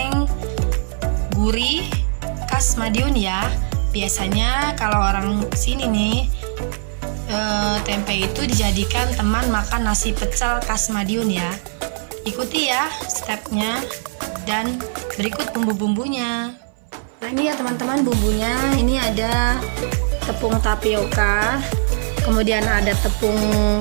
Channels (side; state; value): left; silent; 59 dB below the other